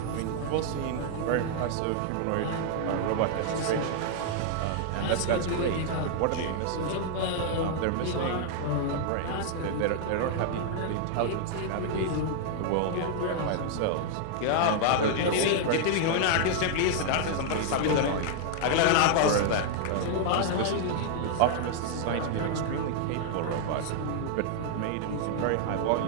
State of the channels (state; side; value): different; both; correlation 0.00